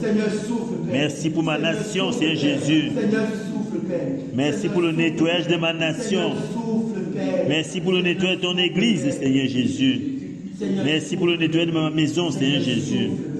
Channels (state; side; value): identical; both; correlation 1.00